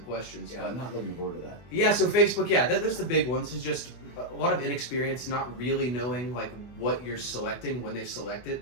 Yeah, but I'm not looking forward to that. Yeah, so Facebook, yeah, there's the big ones. It's just a lot of inexperience, not really knowing like what you're selecting when they select it.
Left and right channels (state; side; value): late; right; 24 ms